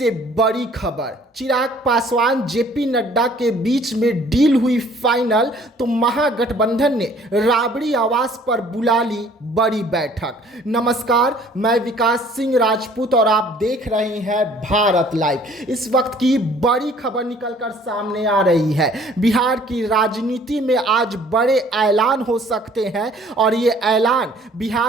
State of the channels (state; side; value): normal; both; correlation 0.56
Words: बड़ी खबर। चिराग पासवान जेपी नड्डा के बीच में डील हुई फाइनल, तो महागठबंधन ने राबड़ी आवास पर बुला ली बड़ी बैठक। नमस्कार, मैं विकास सिंह राजपूत और आप देख रहे हैं भारत लाइव। इस वक्त की बड़ी खबर निकलकर सामने आ रही है। बिहार की राजनीति में आज बड़े ऐलान हो सकते हैं और ये ऐलान